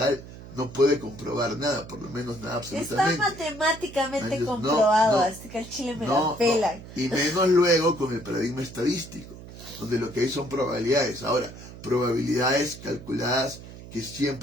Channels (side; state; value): right; noise; hum, 15 dB below the sound